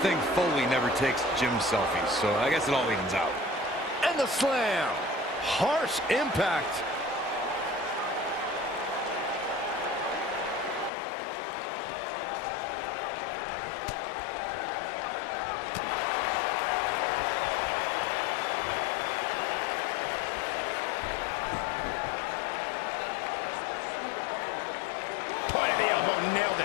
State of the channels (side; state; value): right; drops out; at 10.9 s